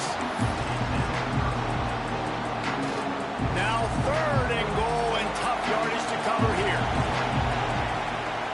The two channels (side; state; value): both; identical; correlation 1.00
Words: Now third and goal, and tough yardage to cover here.